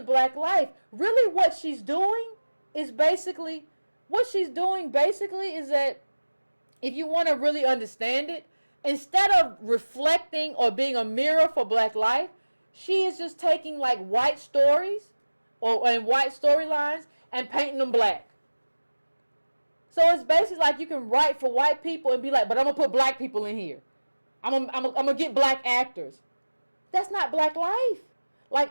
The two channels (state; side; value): inverted; both; correlation -1.00